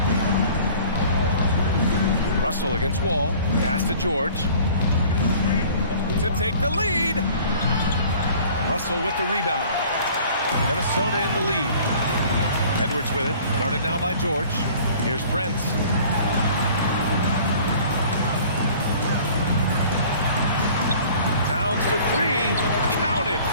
Russell against Wall. Pass to George. To take the lead. Russell with the rebound. Minnesota in the lead. Edwards with it. Guarded now by George. Here's Prince. Towns for 3. Counted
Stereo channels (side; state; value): both; inverted; correlation -0.49